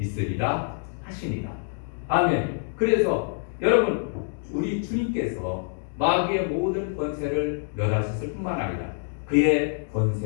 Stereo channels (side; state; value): right; silent; 61 dB below the other